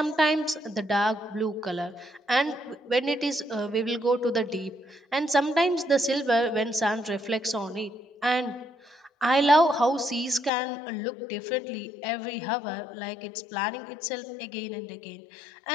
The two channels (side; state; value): right; drops out; at 10.5 s